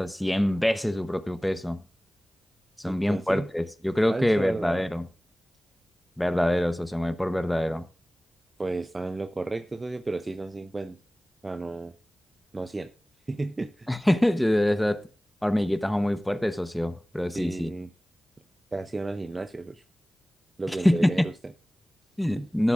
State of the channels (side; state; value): both; normal; correlation 0.98